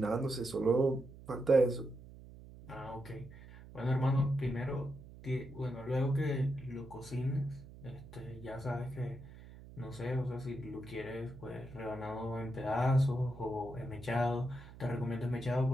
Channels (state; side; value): noise; right; hum, 17 dB below the sound